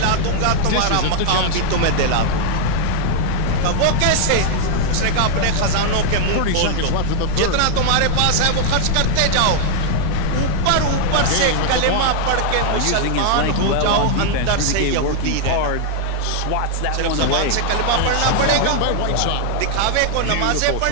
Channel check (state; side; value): different; both; correlation 0.00